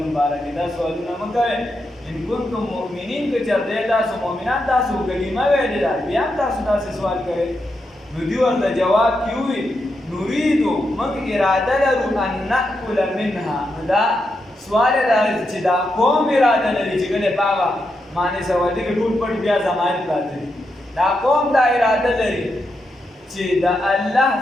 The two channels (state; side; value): normal; both; correlation 0.84